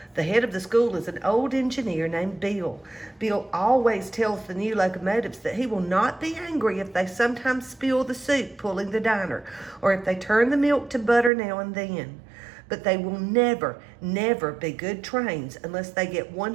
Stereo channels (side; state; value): left; drops out; at 11.3 s